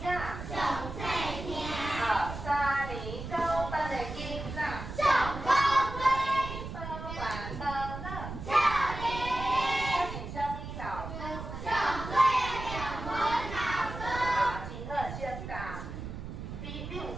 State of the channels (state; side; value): noise; right; rumble, 8 dB below the sound